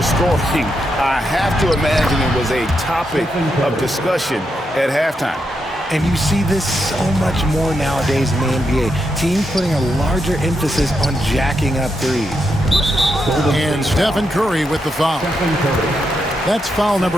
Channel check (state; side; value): normal; both; correlation 0.83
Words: scoring, I have to imagine it was a topic of discussion at halftime. And you see this so much more nowadays in the NBA. Teams putting a larger emphasis on jacking up threes. And Stephen Curry with the foul. That's foul